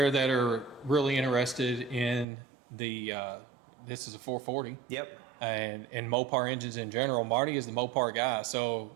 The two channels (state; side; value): drops out; left; at 2.2 s